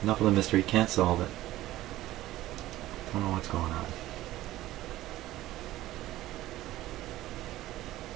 enough of the mystery. Can't solve it. Don't know what's going on.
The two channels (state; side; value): quieter; left; 15.5 dB